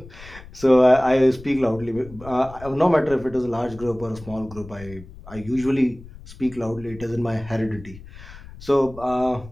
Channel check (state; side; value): noise; left; rumble, 17 dB below the sound